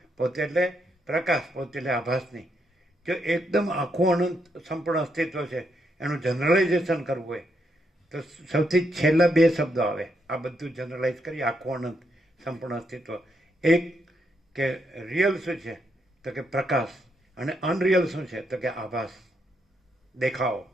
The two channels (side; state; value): both; normal; correlation 0.79